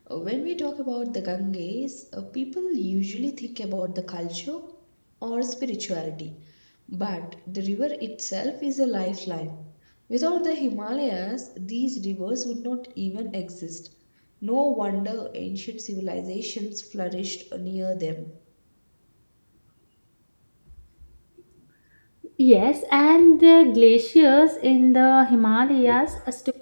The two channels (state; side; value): inverted; both; correlation -1.00